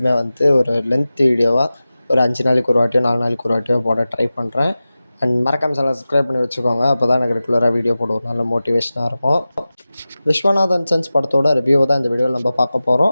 ஒரு லென்த் வீடியோவாக ஒரு 5 நாளைக்கு ஒரு வாட்டியோ 4 நாளைக்கு ஒரு வாட்டியோ போட ட்ரை பண்ணுறேன். அண்ட் மறக்காம சேனல் சப்ஸ்கிரைப் பண்ணி வச்சுக்கோங்க. அப்போ தான் எனக்கு ரெகுலராக வீடியோ போட ஒரு நல்ல மோட்டிவேஷனாக இருக்கும். விஸ்வநாதன் சன்ஸ் படத்தோட ரிவ்யூவை தான் இந்த வீடியோவில் நம்ம பார்க்க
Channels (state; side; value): inverted; both; correlation -0.95